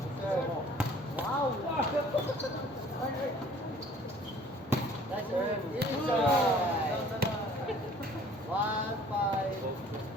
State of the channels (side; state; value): both; normal; correlation 0.53